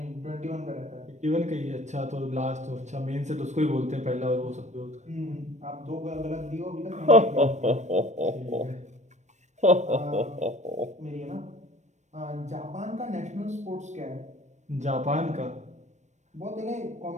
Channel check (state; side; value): late; left; 0.34 ms